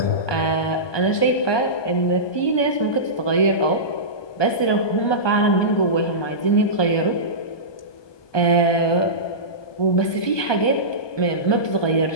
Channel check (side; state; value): right; late; 1.2 ms